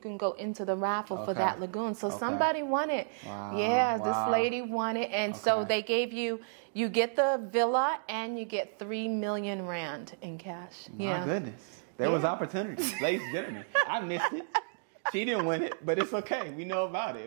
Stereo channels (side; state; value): left; silent; digital silence